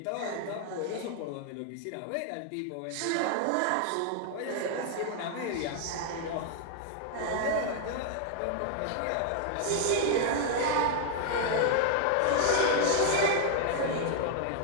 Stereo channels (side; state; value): both; different; correlation 0.00